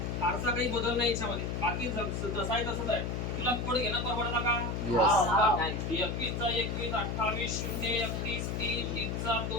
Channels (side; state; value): left; noise; hum, 2 dB below the sound